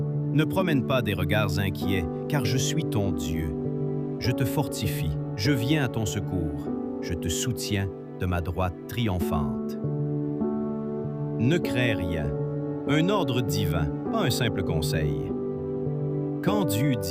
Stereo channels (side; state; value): both; identical; correlation 1.00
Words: Ne promène pas des regards inquiets, car je suis ton Dieu. Je te fortifie, je viens à ton secours, je te soutiens de ma droite triomphante. Ne crains rien, un ordre divin, pas un simple conseil. Quand Dieu